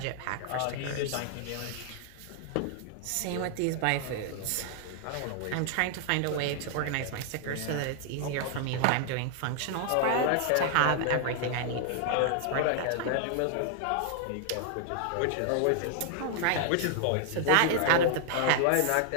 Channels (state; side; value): different; both; correlation 0.00